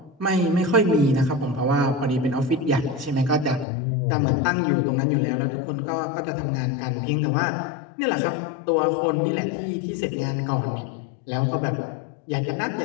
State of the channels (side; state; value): right; drops out; at 3.7 s